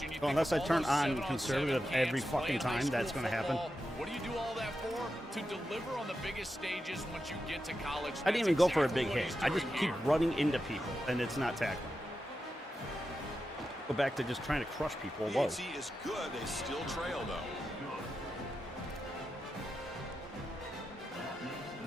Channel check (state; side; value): normal; both; correlation 0.89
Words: Well, unless I turn on conservative every fucking time, that's going to happen. What do you do all that for? To deliver on the biggest stages once you get to college. I didn't even go for a big hit. I just keep running into people, and it's not tackling. Go back to just trying to crush people. Whoa. The is good. They still trail, though.